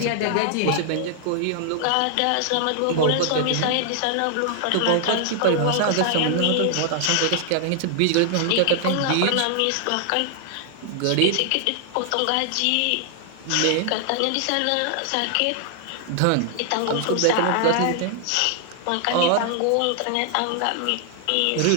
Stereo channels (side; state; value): both; different; correlation 0.00